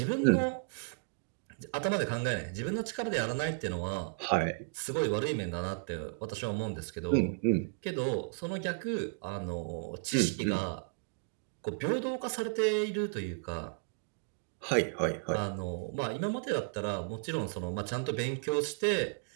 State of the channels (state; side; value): silent; left; digital silence